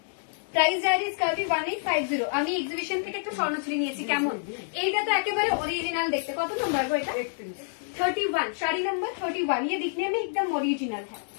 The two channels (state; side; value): silent; right; digital silence